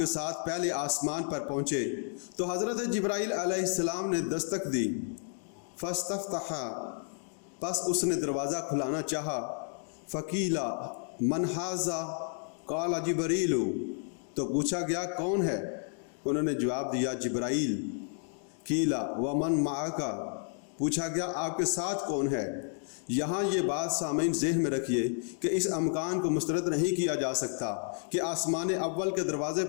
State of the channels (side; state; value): right; silent; 57 dB below the other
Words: ساتھ پہلے آسمان پر پہنچے تو حضرت جبرائیل علیہ السلام نے دستک دی۔ فاستفتح، پس اس نے دروازہ کھلانا چاہا۔ فقیلا من ھذا، قال جبرائیل، تو پوچھا گیا کون ہے؟ انہوں نے جواب دیا جبرائیل۔ قیلا ومن معک، پوچھا گیا آپ کے ساتھ کون ہے؟ یہاں یہ بات سامعین ذہن میں رکھیے کہ اس امکان کو مسترد نہیں کیا جا سکتا کہ آسمان اول کے دروازے